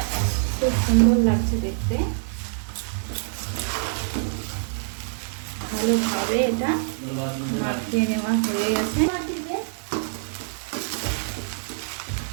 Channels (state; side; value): silent; left; digital silence